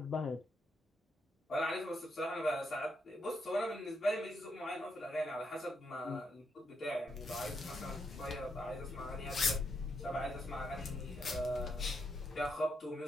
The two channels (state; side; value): normal; both; correlation 0.79